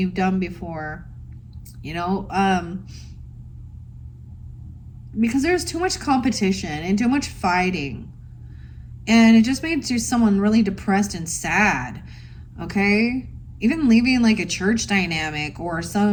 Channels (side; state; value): both; identical; correlation 1.00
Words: done before. Because there's too much competition and too much fighting. And it just makes you someone really depressed and sad. Okay? Even leaving like a church dynamic or